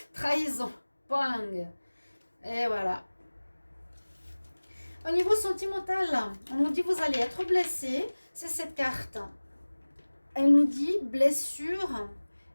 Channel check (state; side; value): inverted; both; correlation -1.00